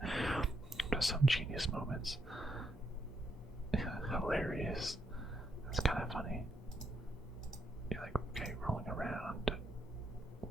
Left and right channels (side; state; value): both; normal; correlation 0.78